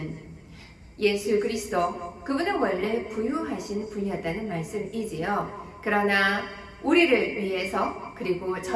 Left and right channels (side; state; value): both; identical; correlation 1.00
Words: 예수 그리스도, 그분은 원래 부유하신 분이었다는 말씀이지요. 그러나 우리를 위해서 그리고